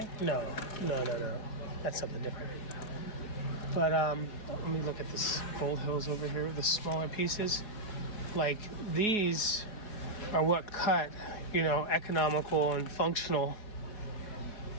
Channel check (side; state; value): right; late; 4.6 ms